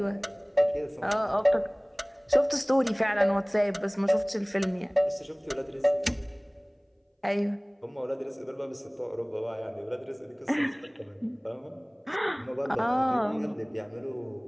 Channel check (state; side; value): identical; both; correlation 1.00